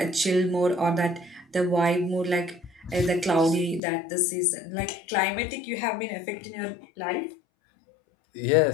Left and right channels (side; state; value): right; drops out; at 3.8 s